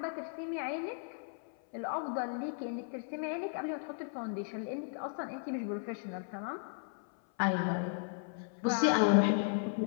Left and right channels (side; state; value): right; silent; 54 dB below the other